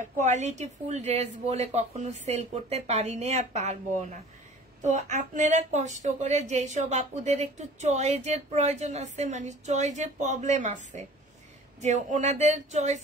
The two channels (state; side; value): normal; both; correlation 0.45